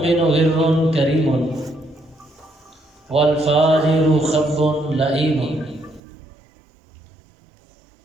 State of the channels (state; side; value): drops out; left; at 6.0 s